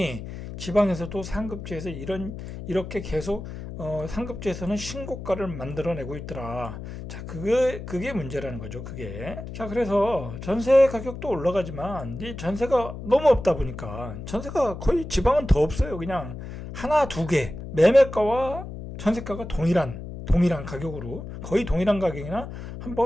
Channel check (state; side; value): noise; left; hum, 10 dB below the sound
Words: 지방에서도 상급지에서 이렇게 계속 상급지에서는 신고가를 만들어내고 있더라. 자, 그게 문제라는 거죠. 그게. 자, 그래서 전세 가격도 올라가지만 이 전세가 너무 없다 보니까, 전세가 거의 지방은 더 없어요. 그냥 하나, 두 개. 매매가와 전세가가 동일한 가격으로, 거의 동일한 가격이나